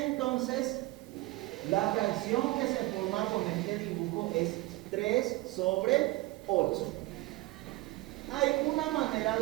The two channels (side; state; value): left; quieter; 20.1 dB